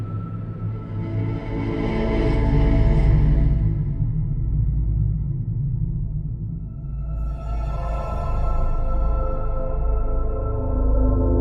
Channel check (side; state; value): both; identical; correlation 1.00